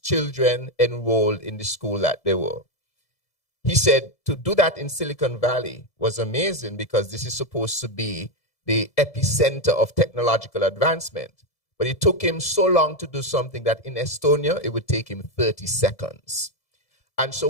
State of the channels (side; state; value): right; late; 1.7 ms